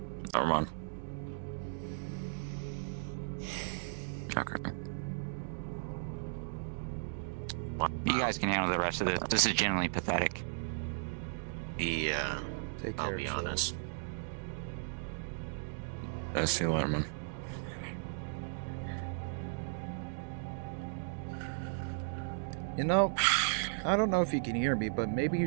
Never mind. Okay. You guys can handle the rest of this. This is genuinely pathetic. Yeah. Take I'll care be of honest. I see you later, man. You know, I don't know if you can hear me, but maybe you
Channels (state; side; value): silent; left; digital silence